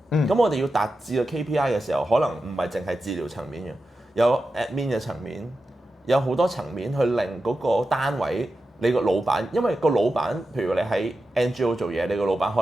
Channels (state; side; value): normal; both; correlation 0.91